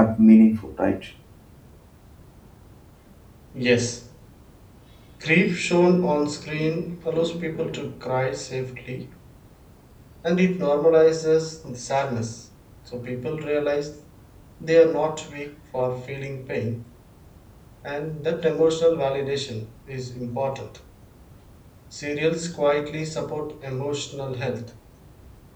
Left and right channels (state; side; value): identical; both; correlation 1.00